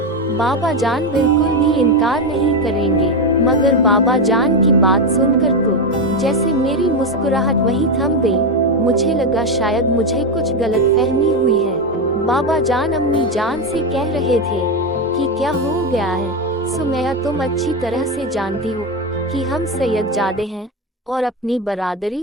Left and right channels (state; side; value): normal; both; correlation 0.11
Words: बाबा जान बिल्कुल भी इनकार नहीं करेंगे। मगर बाबा जान की बात सुनकर तो जैसे मेरी मुस्कुराहट वहीं थम गई। मुझे लगा शायद मुझे कुछ गलतफहमी हुई है। बाबा जान अम्मी जान से कह रहे थे कि क्या हो गया है सुमैया, तुम अच्छी तरह से जानती हो कि हम सैयदजादे हैं और अपनी